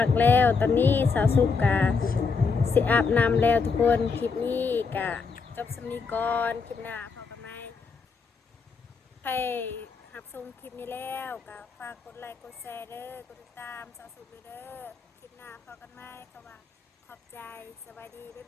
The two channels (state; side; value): quieter; right; 5.0 dB